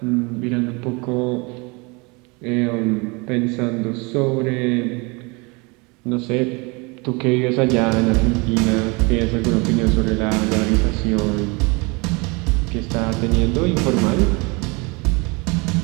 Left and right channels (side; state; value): left; quieter; 28.4 dB